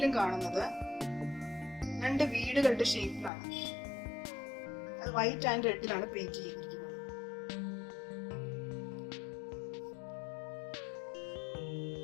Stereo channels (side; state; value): right; drops out; at 3.3 s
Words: കാണുന്നത് രണ്ട് വീടുകളുടെ ഷേപ്പിലാണ്. അത് വൈറ്റ് ആൻഡ് റെഡിലാണ് പെയിന്റ് ചെയ്തിരിക്കുന്നത്.